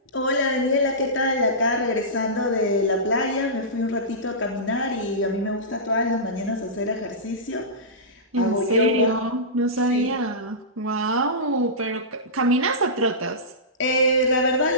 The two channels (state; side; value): normal; both; correlation -0.18